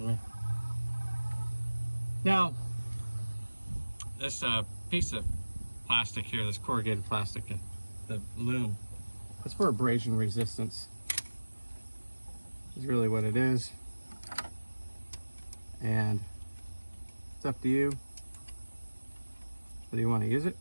me. Now, this piece of plastic here, this corrugated plastic, the loom, it's for abrasion resistance. Is really what it is. And it's up to you. Whether you want to use it.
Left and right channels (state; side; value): inverted; both; correlation -1.00